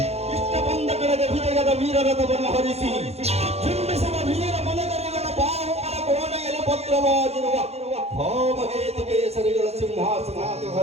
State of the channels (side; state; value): left; late; 0.30 ms